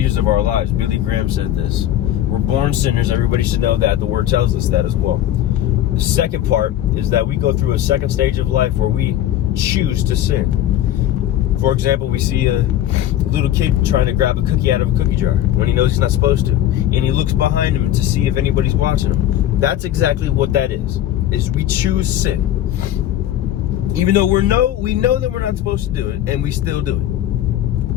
of our lives. Billy Graham said this. We're born sinners. Everybody should know that. The word tells us that as well. The second part is that we go through a second stage of life where we choose to sin. For example, we see a little kid trying to grab a cookie out of a cookie jar when he knows he's not supposed to. And he looks behind him to see if anybody's watching him. That's exactly what that is we choose sin. Even though we know that we're not supposed to do it, and we still do it.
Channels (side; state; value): right; quieter; 12.2 dB